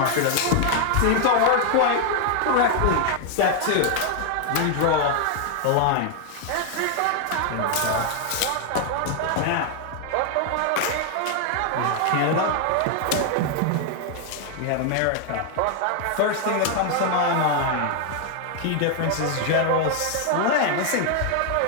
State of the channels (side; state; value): both; different; correlation 0.00